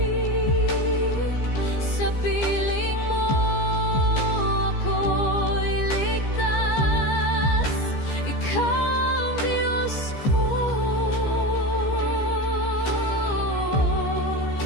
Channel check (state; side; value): late; right; 15 ms